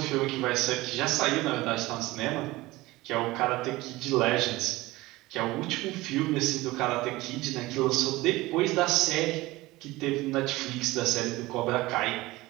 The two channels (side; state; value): left; quieter; 19.5 dB